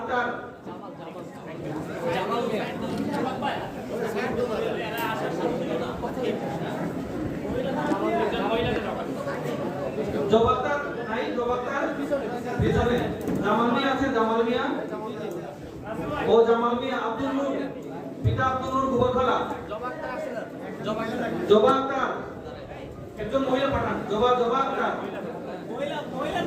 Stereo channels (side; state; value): both; identical; correlation 1.00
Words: জবাবদার নাই, জবাবদার পিছনে জামাল মিয়া আছে, জামাল মিয়া ও জামাল মিয়া। আব্দুল নূর পিতা আব্দুল নূর গোবরখোলা। জবা আক্তার একজন মহিলা পাঠান। জবা আক্তার, মহিলা